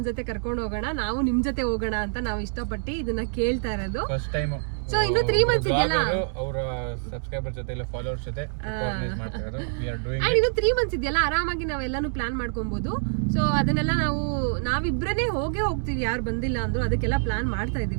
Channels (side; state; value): left; silent; 61 dB below the other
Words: ಜೊತೆ ಕರ್ಕೊಂಡು ಹೋಗೋಣ, ನಾವು ನಿಮ್ ಜೊತೆ ಹೋಗೋಣ ಅಂತ ನಾವು ಇಷ್ಟಪಟ್ಟು ಇದನ್ನ ಕೇಳ್ತಾ ಇರೋದು. ಸೊ ಇನ್ನು 3 ಮಂತ್ಸ್ ಇದೆಯಲ್ಲ, ಅವರ ಸಬ್ಸ್ಕ್ರೈಬರ್ ಜೊತೆ ಇಲ್ಲ ಫಾಲೋವರ್ಸ್ ಜೊತೆ ಆರ್ಗನೈಸ್ ಮಾಡ್ತಾ ಇರೋದು. ವಿ ಆರ್ ಡೂಯಿಂಗ್ ಅಂಡ್ ಇನ್ನು 3 ಮಂತ್ಸ್ ಇದೆಯಲ್ಲ, ಆರಾಮಾಗಿ ನಾವೆಲ್ಲಾನು ಪ್ಲಾನ್ ಮಾಡ್ಕೊಬಹುದು. ಸೊ ಅದನ್ನೆಲ್ಲ ನಾವಿಬ್ರೇ ಹೋಗ್ತೀವಿ, ಯಾರು ಬಂದಿಲ್ಲ ಅಂದ್ರು. ಅದಕ್ಕೆಲ್ಲ ಪ್ಲಾನ್ ಮಾಡ್ತಾ